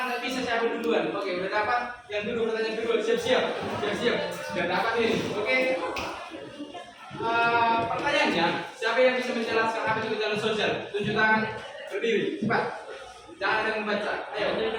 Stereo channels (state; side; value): identical; both; correlation 1.00